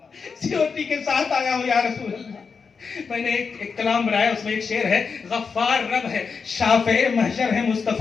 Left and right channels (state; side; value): quieter; right; 5.4 dB